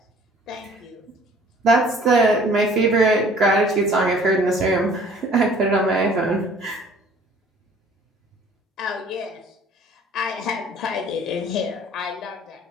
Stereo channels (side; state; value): both; normal; correlation 0.53